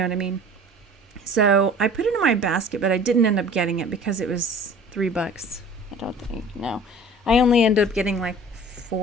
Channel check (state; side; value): normal; both; correlation 0.45